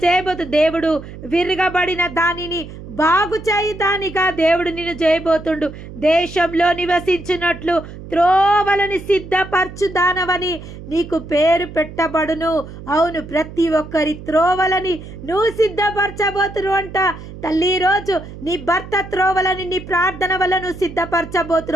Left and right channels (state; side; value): noise; right; hum, 14 dB below the sound